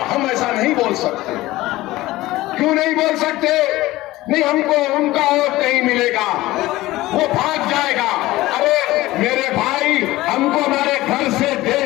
हम ऐसा नहीं बोल सकते। क्यों नहीं बोल सकते? नहीं, हमको उनका वोट नहीं मिलेगा, वो भाग जाएगा। अरे मेरे भाई, हमको हमारे घर से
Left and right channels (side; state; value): right; quieter; 17.7 dB